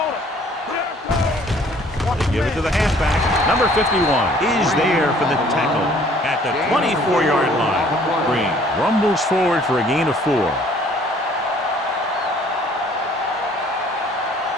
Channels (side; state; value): both; normal; correlation 0.57